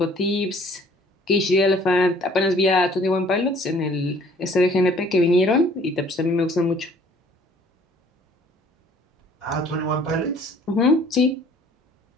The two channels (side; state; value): both; normal; correlation 0.56